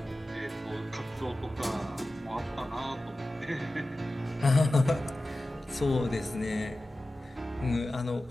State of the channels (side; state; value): both; normal; correlation 0.95